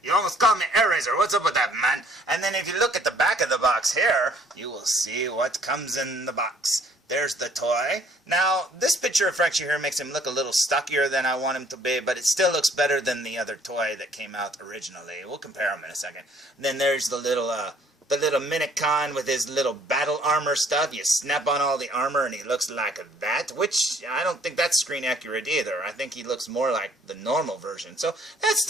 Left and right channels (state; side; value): normal; both; correlation 0.60